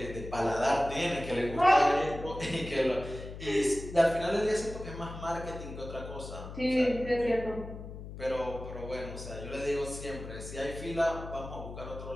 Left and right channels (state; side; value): noise; left; hum, 11 dB below the sound